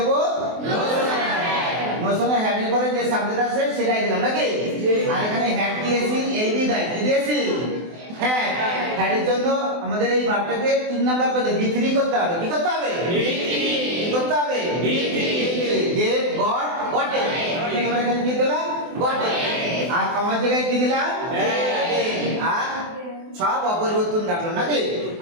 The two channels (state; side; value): late; left; 24 ms